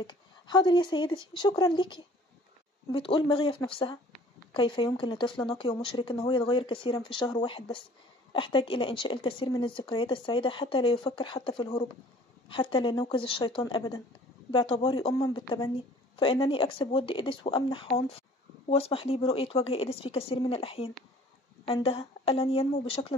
حاضر يا سيدتي، شكرا ليكي. بتقول مغية في نفسها: كيف يمكن لطفل نقي ومشرك إن هو يتغير كثيرا في شهر واحد بس؟ أحتاج إلى إنشاء الكثير من الذكريات السعيدة حتى لا يفكر حتى في الهروب، حتى لا نوقظ الشيطان أبدا. باعتباري أما بالتبني فإنني أكسب ود إيديس وأمنح عنف، واسمح لي برؤية وجه إيديس في كثير من الأحيان. عندها ألن ينمو بشكل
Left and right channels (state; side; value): normal; both; correlation 0.51